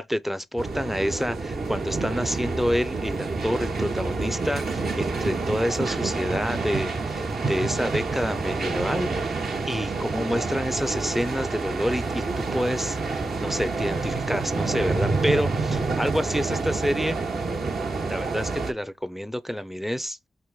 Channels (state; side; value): normal; both; correlation 0.91